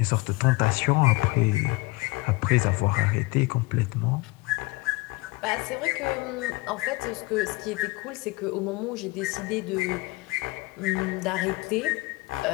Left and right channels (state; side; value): quieter; right; 22.7 dB